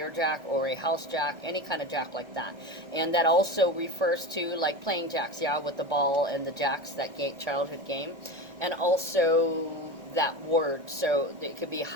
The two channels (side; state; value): left; late; 1.6 ms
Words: jack or a house jack, any kind of jack like that. And that also refers to like playing jacks, yeah, with the ball and the jacks, that childhood game. And also that word, so it could be